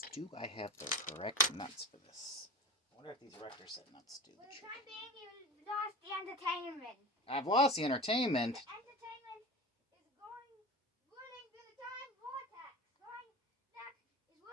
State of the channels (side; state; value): both; normal; correlation 0.30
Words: do I have the correct nuts for this? I wonder if these Rector set nuts do the trick. For the time being, you lost the entertainment. I've lost the entertainment. The entertainment is whirling through the time vortex.